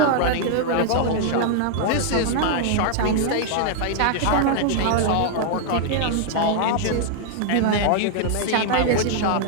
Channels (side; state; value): both; different; correlation -0.01